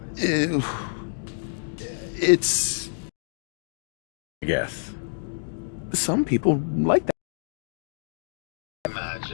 It's... I guess. Some people like that.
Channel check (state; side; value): silent; right; digital silence